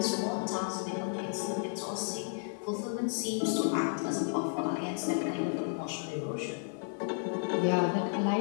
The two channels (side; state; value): right; silent; 56 dB below the other